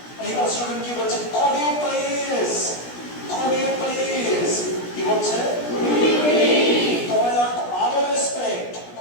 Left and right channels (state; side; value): late; right; 17 ms